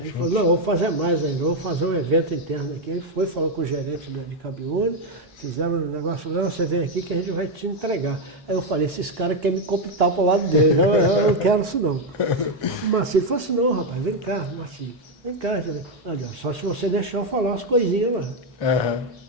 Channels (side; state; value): both; normal; correlation 0.05